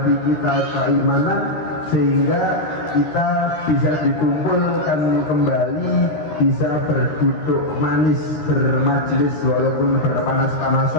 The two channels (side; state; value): right; late; 13 ms